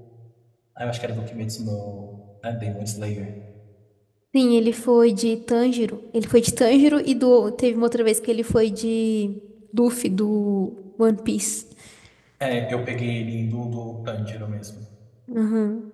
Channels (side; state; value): both; identical; correlation 1.00